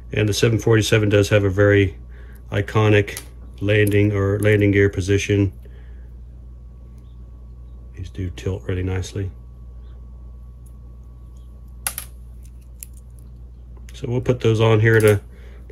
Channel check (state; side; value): identical; both; correlation 1.00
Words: And the 747 does have a very iconic landing gear position. These do tilt really nicely. So we'll put those on here in a